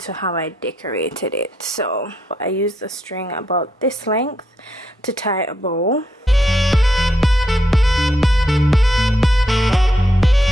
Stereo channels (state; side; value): normal; both; correlation 0.78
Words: how I decorated it. So I used a string about this length to tie a bow.